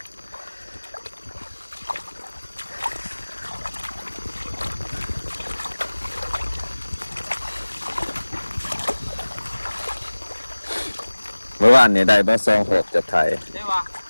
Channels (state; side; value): inverted; both; correlation -1.00